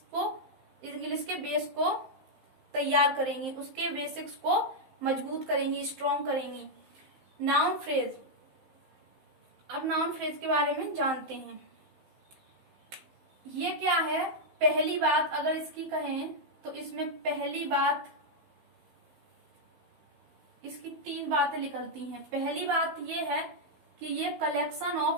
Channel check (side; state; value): left; late; 15 ms